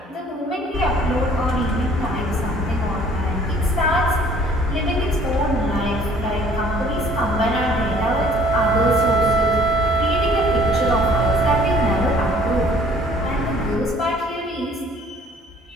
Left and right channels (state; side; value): normal; both; correlation 0.55